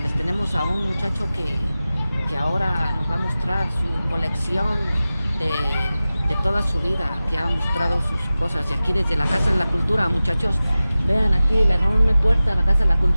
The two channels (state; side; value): inverted; both; correlation -0.96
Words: tenemos a un muchacho que ahora nos va a mostrar su colección de toda su vida, que ha mostrado sus cosas. Y aquí desde la Casa de la Cultura, muchachos, vean aquí la enorme puerta de la Casa de la